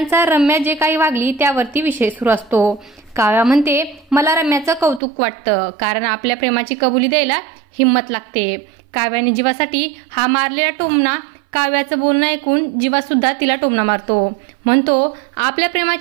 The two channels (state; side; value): drops out; left; at 5.0 s